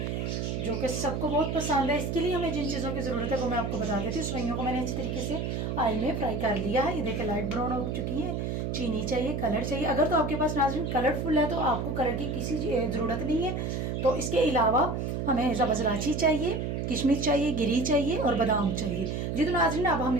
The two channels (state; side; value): noise; right; hum, 2 dB below the sound